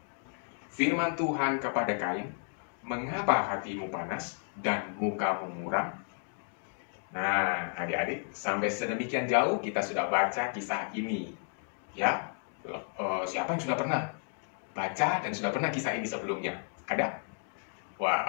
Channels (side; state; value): right; silent; 56 dB below the other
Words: Firman Tuhan kepada Kain, "Mengapa hatimu panas dan mukamu muram?" Nah, adik-adik, sampai sedemikian jauh kita sudah baca kisah ini. Ya, siapa yang sudah pernah baca dan sudah pernah kisah ini sebelumnya? Ada?